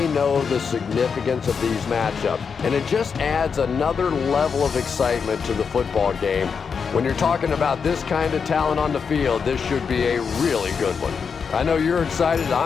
know the significance of these matchups, and it just adds another level of excitement to the football game. When you're talking about this kind of talent on the field, this should be a really good one. I know you're excited.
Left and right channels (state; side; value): quieter; right; 6.0 dB